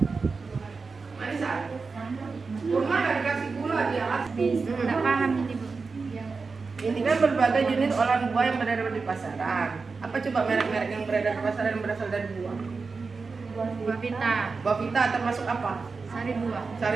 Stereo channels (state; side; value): quieter; left; 4.5 dB